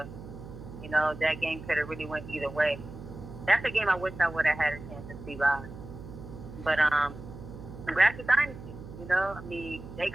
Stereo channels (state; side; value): noise; right; hum, 13 dB below the sound